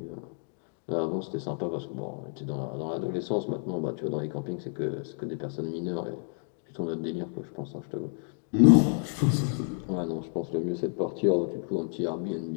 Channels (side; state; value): right; silent; 58 dB below the other